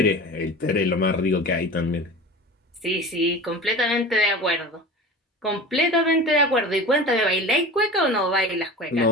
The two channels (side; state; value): both; normal; correlation 0.34